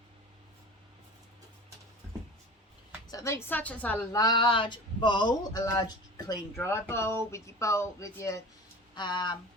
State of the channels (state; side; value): normal; both; correlation 0.36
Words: So think such as a large bowl, a large clean dry bowl with your